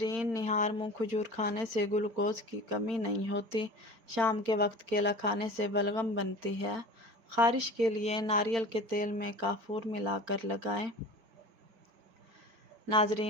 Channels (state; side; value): late; left; 4.4 ms